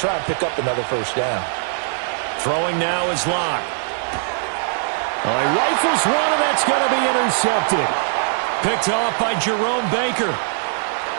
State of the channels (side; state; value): left; silent; 65 dB below the other